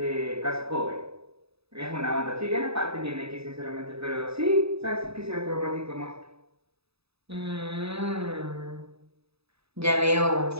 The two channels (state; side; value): late; left; 0.78 ms